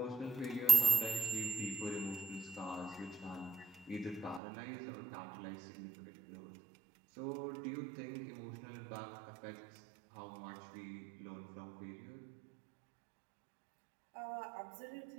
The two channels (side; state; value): left; drops out; at 4.4 s